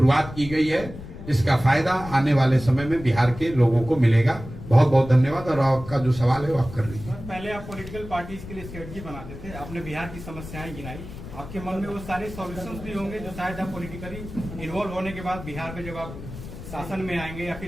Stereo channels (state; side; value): noise; left; rumble, 12 dB below the sound